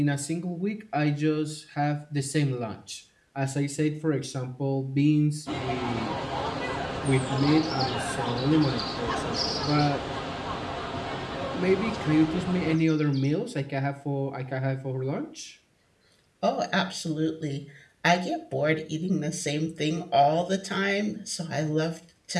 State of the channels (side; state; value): both; identical; correlation 1.00